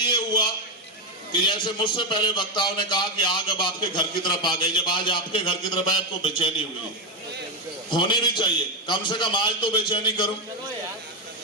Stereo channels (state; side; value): normal; both; correlation 0.07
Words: हुआ कि जैसे मुझसे पहले वक्ताओं ने कहा कि आग अब आपके घर की तरफ आ गई। जब आज आपके घर की तरफ आए, आपको बेचैनी हुई, होनी भी चाहिए, कम से कम आज तो बेचैनी करो।